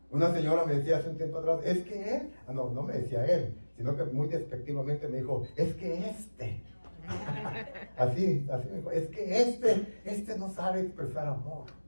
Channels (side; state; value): both; inverted; correlation -1.00